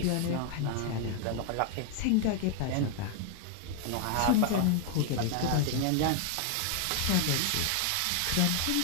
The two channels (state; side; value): different; both; correlation 0.00